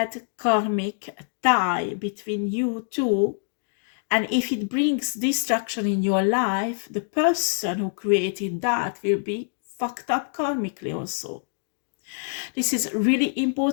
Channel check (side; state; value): right; silent; digital silence